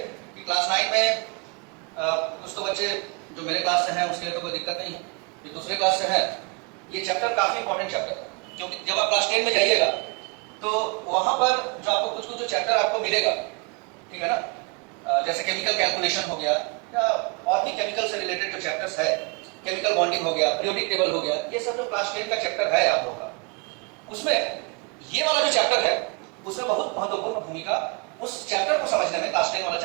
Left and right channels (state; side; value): quieter; left; 31.7 dB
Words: कि क्लास 9 में कुछ तो बच्चे जो मेरे क्लास से हैं उसके लिए तो कोई दिक्कत नहीं है, जो दूसरे क्लास से है ये चैप्टर काफी इंपॉर्टेंट चैप्टर है, क्योंकि जब आप क्लास 10 में जाइएगा तो वहां पर जो आपको कुछ कुछ जो चैप्टर आपको मिलेगा, ठीक है ना, जैसे केमिकल कैलकुलेशन हो गया या और भी केमिकल से रिलेटेड जो चैप्टर्स है, केमिकल बॉन्डिंग हो गया, पीरियोडिक टेबल हो गया, ये सब जो क्लास 10 का चैप्टर है आप लोगों का, उसमें ये वाला जो चैप्टर है उसमें बहुत महत्वपूर्ण भूमिका उस चैप्टर को समझने में, क्लास 10 वाला